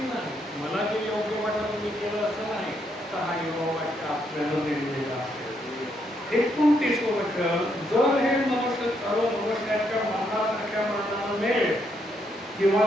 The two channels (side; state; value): both; normal; correlation 0.75